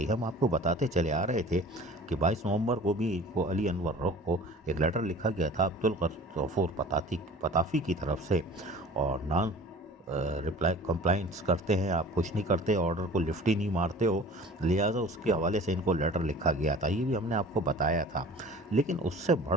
हम आपको बताते चले आ रहे थे कि 22 नवंबर को भी को अली अनवर रोक को एक लेटर लिखा गया था अब्दुल गफूर पताफी की तरफ से, और नॉन रिप्लाई कंप्लाइंस करते हैं, आप कुछ नहीं करते, ऑर्डर को लिफ्ट ही नहीं मारते हो, लिहाजा उसके हवाले से इनको लेटर लिखा गया था। ये भी हमने आपको बताया था। लेकिन उससे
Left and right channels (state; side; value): normal; both; correlation 0.44